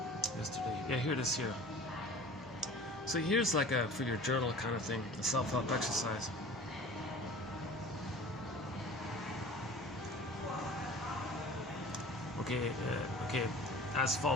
yesterday. Yeah, here it is here. So here's like a for your journal kind of thing, a self-help exercise. Okay, as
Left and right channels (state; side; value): normal; both; correlation 0.42